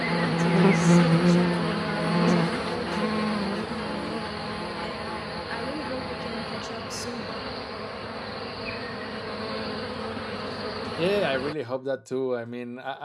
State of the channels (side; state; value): both; identical; correlation 1.00